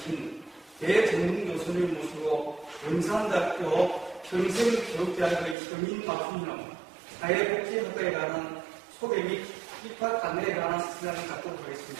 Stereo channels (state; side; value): drops out; left; at 5.6 s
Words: 대정문 교수님 모시고 영산대학교 평생교육대학의 서민맞춤형 사회복지학과에 관한 소개 및 입학 안내에 관한 시간을 갖도록